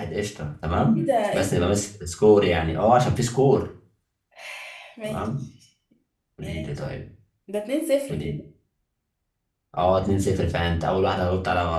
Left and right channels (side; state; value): both; identical; correlation 1.00